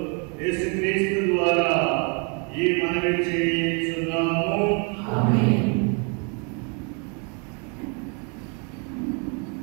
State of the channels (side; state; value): left; quieter; 35.9 dB